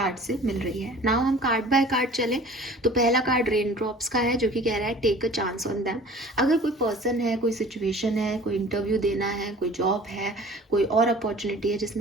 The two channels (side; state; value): both; normal; correlation 0.46